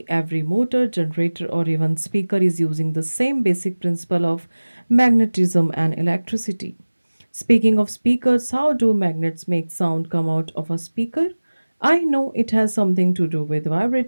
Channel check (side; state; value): both; inverted; correlation -1.00